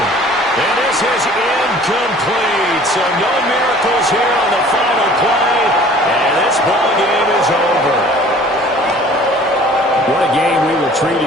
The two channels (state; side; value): normal; both; correlation 0.50